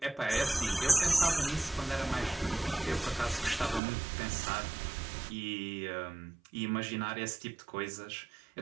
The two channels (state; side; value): drops out; left; at 3.8 s